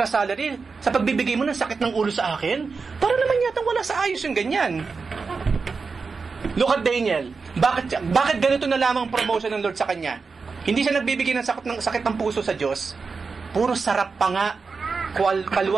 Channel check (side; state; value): left; quieter; 4.7 dB